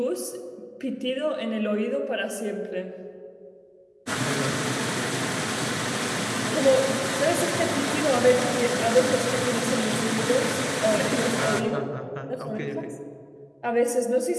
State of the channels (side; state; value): both; identical; correlation 1.00